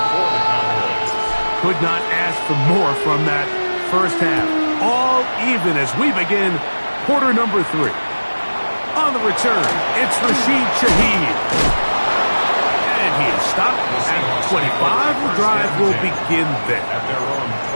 Could not ask for more from that first half. All even as we begin quarter number 3. On the return, it's Rashid Shaheed. And he is stopped at 25. The drive will begin there. At their own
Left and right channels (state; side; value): inverted; both; correlation -1.00